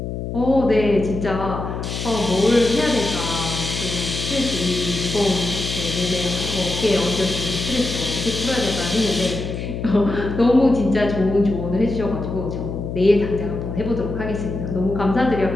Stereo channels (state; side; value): noise; left; hum, 5 dB below the sound